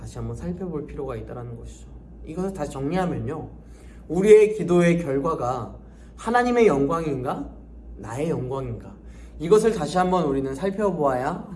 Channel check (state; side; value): identical; both; correlation 1.00